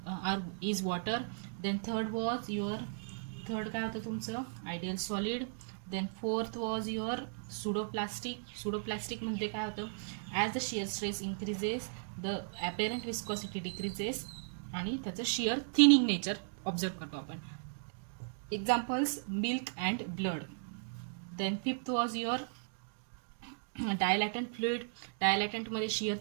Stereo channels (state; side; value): silent; left; digital silence